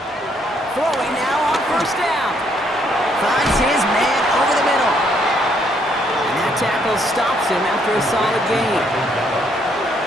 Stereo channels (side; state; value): both; normal; correlation 0.70